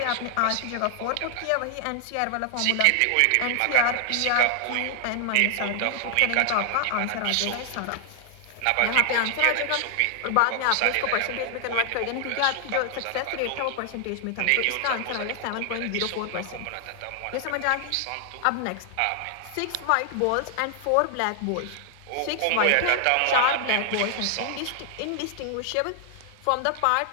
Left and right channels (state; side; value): different; both; correlation 0.00